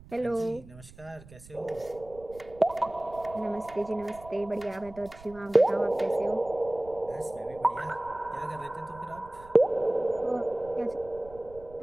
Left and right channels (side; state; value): right; noise; rumble, 20 dB below the sound